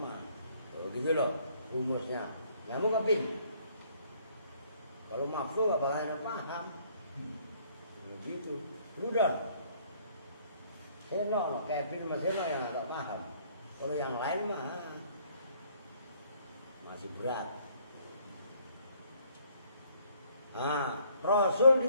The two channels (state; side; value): inverted; both; correlation -0.62